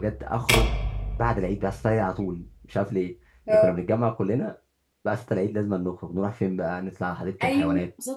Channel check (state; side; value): identical; both; correlation 1.00